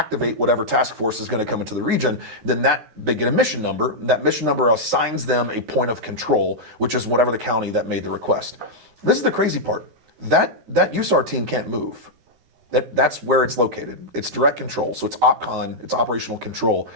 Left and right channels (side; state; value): left; late; 13 ms